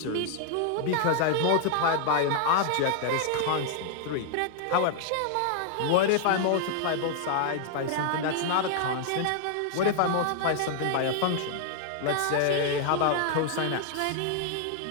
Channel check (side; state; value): both; different; correlation 0.00